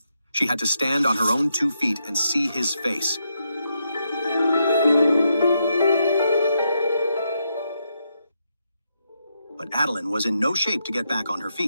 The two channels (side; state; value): both; inverted; correlation -0.81